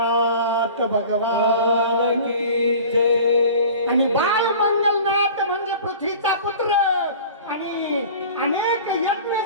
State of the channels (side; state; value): both; inverted; correlation -0.42